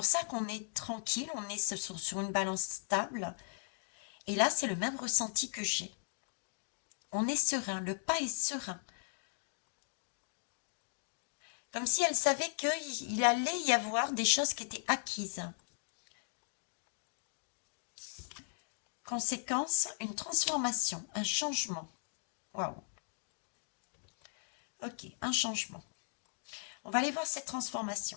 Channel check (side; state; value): right; silent; digital silence